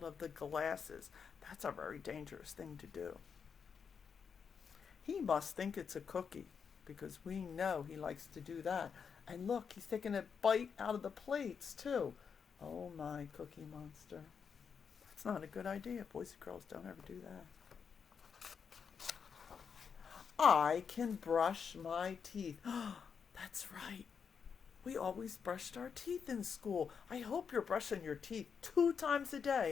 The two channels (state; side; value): quieter; right; 6.5 dB